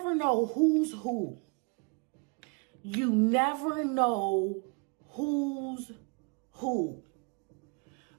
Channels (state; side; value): quieter; left; 32.3 dB